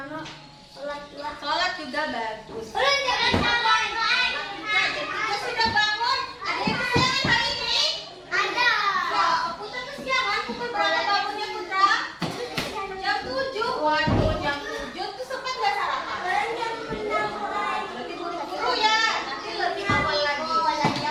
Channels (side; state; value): both; identical; correlation 1.00